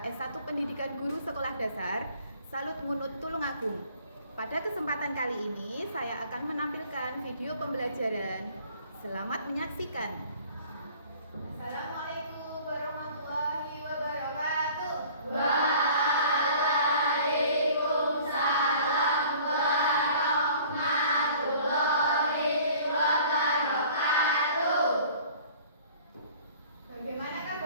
S1 Pendidikan Guru Sekolah Dasar Salut Munut Tulungagung. Pada kesempatan kali ini saya akan menampilkan video pembelajaran. Selamat menyaksikan. Assalamualaikum warahmatullahi wabarakatuh. Bagaimana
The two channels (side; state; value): both; inverted; correlation -0.50